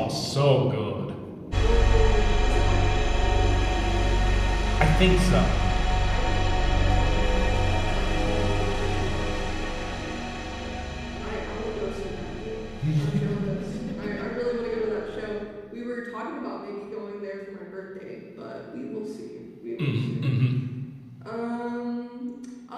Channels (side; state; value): both; identical; correlation 1.00